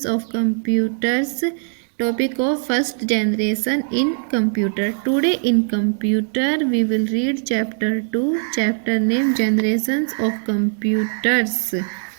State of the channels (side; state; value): left; silent; 62 dB below the other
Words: of computers, topic of first generation in computer. Today in computer we will read chapter 2, chapter name generations of computers.